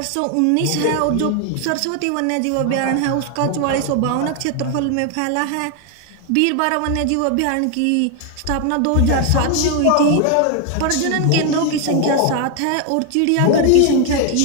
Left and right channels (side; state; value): both; different; correlation 0.01